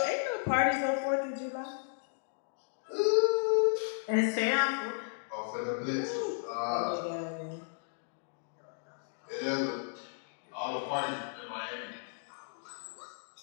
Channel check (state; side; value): silent; right; digital silence